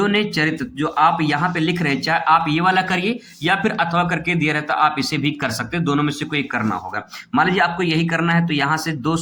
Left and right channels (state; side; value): identical; both; correlation 1.00